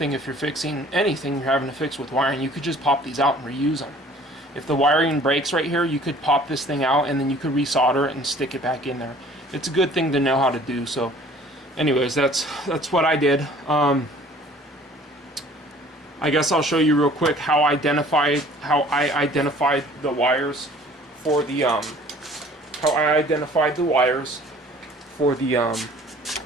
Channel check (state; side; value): normal; both; correlation 0.52